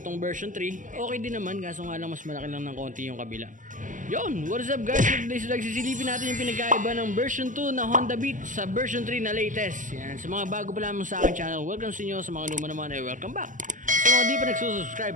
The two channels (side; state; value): left; late; 0.38 ms